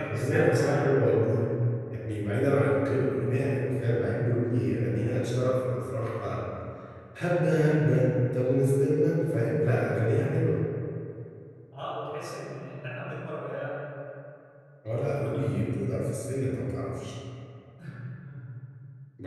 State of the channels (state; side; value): identical; both; correlation 1.00